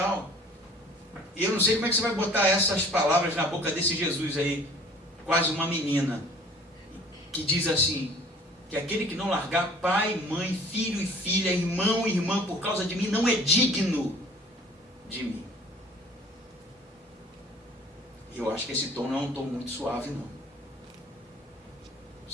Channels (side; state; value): both; normal; correlation 0.50